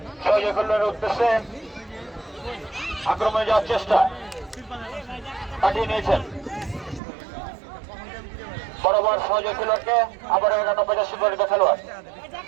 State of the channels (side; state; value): left; drops out; at 7.0 s